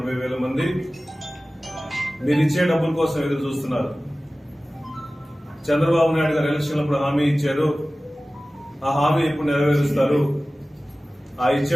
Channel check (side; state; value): both; normal; correlation 0.97